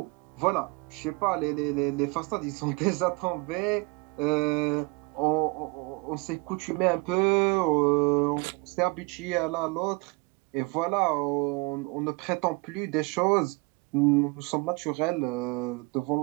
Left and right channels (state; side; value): quieter; left; 28.8 dB